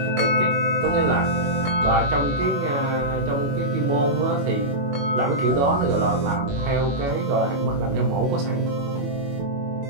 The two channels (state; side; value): late; left; 21 ms